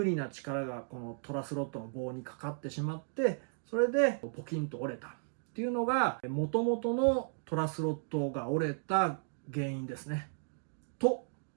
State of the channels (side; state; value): left; silent; digital silence